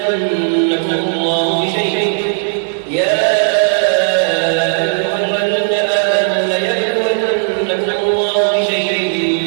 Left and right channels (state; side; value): silent; left; digital silence